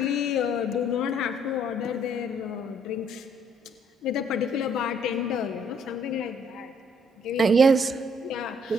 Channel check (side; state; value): both; normal; correlation 0.65